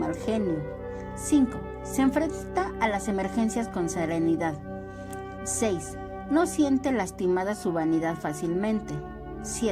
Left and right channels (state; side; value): identical; both; correlation 1.00